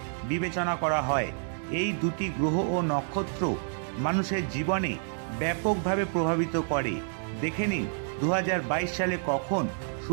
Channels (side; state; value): left; silent; 59 dB below the other